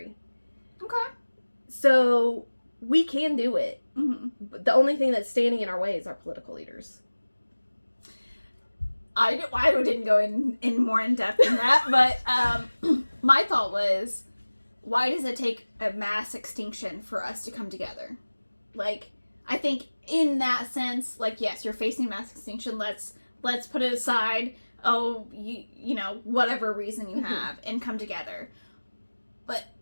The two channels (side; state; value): both; inverted; correlation -1.00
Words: Okay. So we can do it. But the only thing that's standing in our way is our political leaders. I didn't go in more in depth than that, but my thought was, why does it take a mass extinction for us to come together? Like, I think in that sense, like, yes, you're facing mass extinction. Let's put it aside. Oh, you know, whatever reason you have, and come together. But